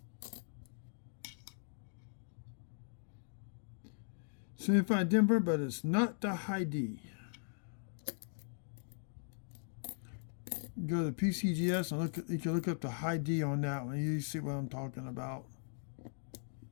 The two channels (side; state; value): right; silent; digital silence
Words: Signified Denver, but it's not the high D. Go to PCGS and look. You can look up the high D on that one. You see what I'm talking about.